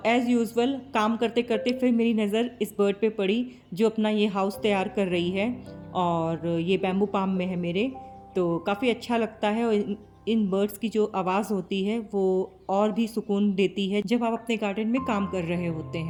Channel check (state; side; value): identical; both; correlation 1.00